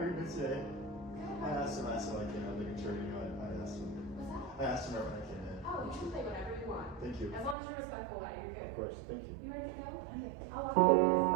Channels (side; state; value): left; drops out; at 7.6 s